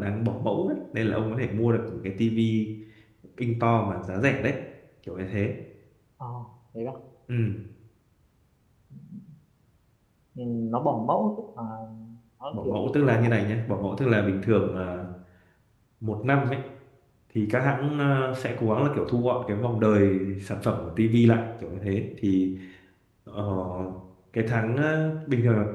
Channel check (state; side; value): identical; both; correlation 1.00